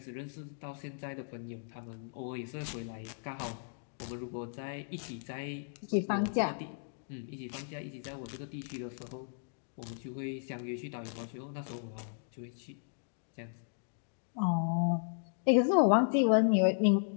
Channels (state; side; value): silent; right; digital silence